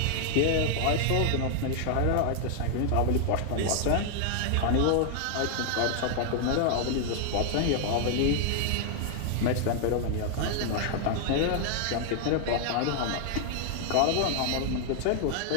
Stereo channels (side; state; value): both; different; correlation 0.00